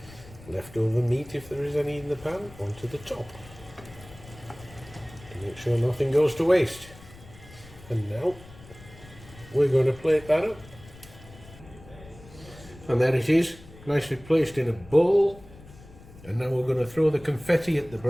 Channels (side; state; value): left; noise; rumble, 20 dB below the sound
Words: leftover meat, if there is any in the pan, onto the top to make sure nothing goes to waste. And now we're going to plate that up. And there it is, nicely placed in a bowl. And now we're going to throw the confetti at the